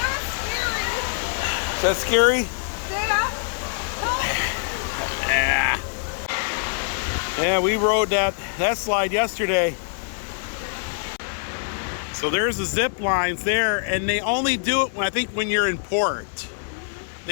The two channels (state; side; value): silent; right; digital silence